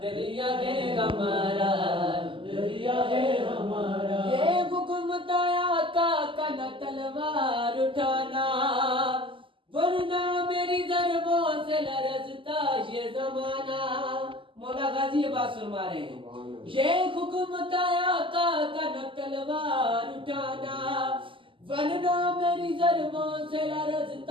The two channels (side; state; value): left; late; 0.25 ms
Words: دریا کے ہمارا دریا کے ہمارا یہ حکم تھا آقا کا نہ تلوار اٹھانا ورنہ میری ضربوں سے لرزتا یہ زمانہ مولا غازی یہ بات فرما رہے ہیں یہ حکم تھا آقا کا نہ تلوار اٹھانا ورنہ میری ضربوں سے